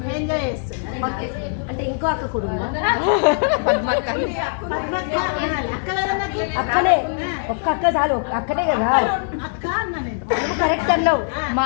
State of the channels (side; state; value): right; silent; digital silence